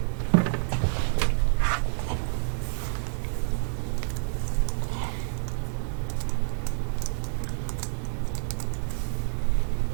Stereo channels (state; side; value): silent; left; 59 dB below the other